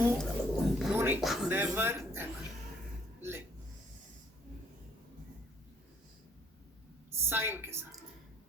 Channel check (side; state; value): both; normal; correlation 0.64